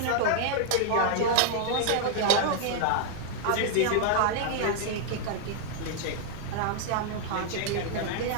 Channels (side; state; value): both; different; correlation -0.01